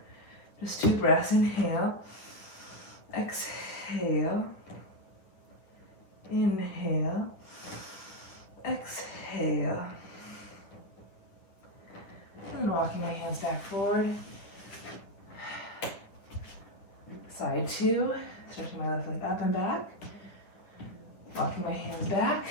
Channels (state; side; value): late; right; 9.9 ms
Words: Just 2 breaths. Inhale, exhale, inhale, exhale. And then walking my hands back forward. Side 2, stretching my left leg up and back. Walking my hands back.